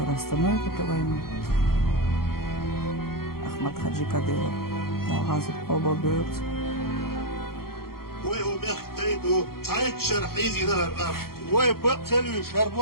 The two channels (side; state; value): right; late; 0.93 ms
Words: остановит эту войну. Ахмад Хаджи Кадыров дал газу оба берут. ويختيدوا تعيد شرحيزي نهر الأرض ويبقتلوا